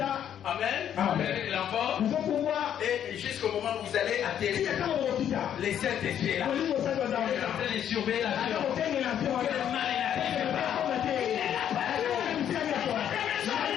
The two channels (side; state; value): right; quieter; 9.8 dB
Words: Amen. Amen. L'envol. Et jusqu'au moment où vous allez atterrir, les Saint-Esprit là. Vous êtes en train de surveiller l'avion. Quel mal il n'arrive pas.